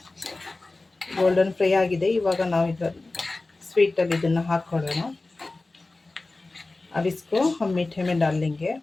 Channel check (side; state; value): right; quieter; 3.2 dB